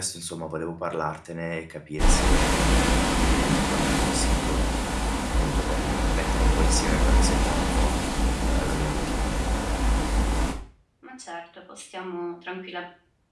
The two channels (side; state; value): both; identical; correlation 1.00